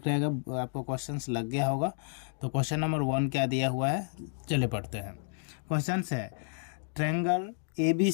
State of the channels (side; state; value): right; silent; digital silence